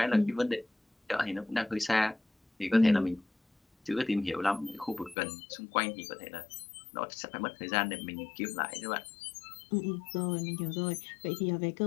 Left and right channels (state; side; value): drops out; right; at 5.2 s